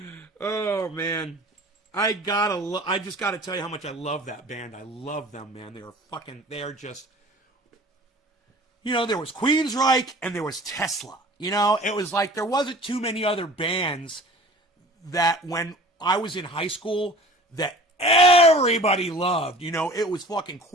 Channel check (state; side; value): normal; both; correlation 0.44